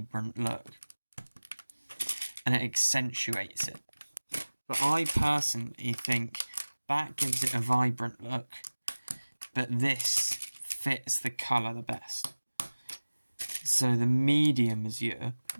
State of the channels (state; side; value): inverted; both; correlation -1.00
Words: look and it accentuates it. But I personally think that gives it a vibrant look, but this fits the colour the best. So the medium azure,